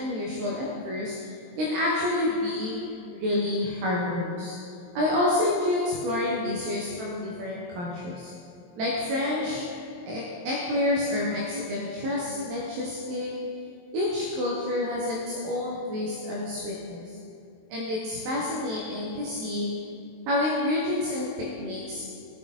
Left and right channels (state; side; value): late; left; 23 ms